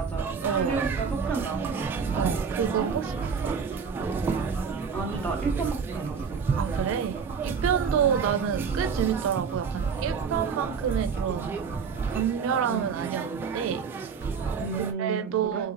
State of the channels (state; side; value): quieter; left; 6.1 dB